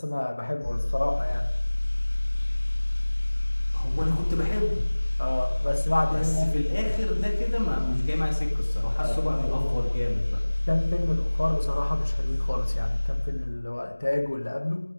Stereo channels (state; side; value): inverted; both; correlation -1.00